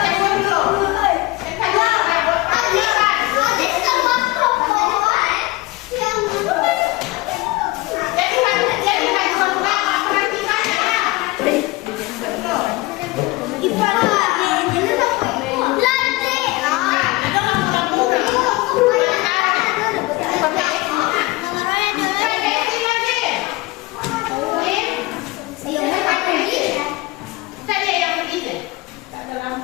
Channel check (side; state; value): right; quieter; 21.2 dB